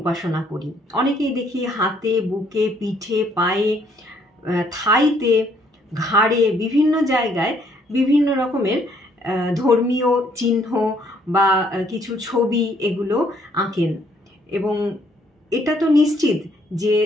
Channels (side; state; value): both; normal; correlation 0.67